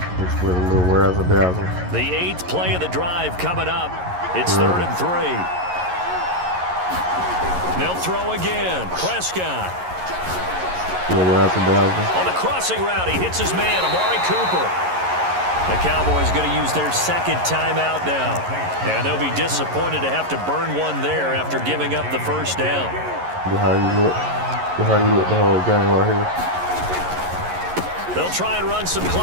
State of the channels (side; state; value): left; late; 11 ms